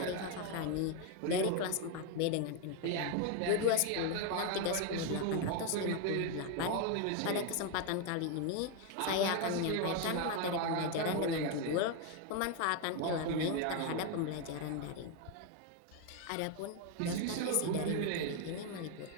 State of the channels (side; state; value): both; different; correlation 0.01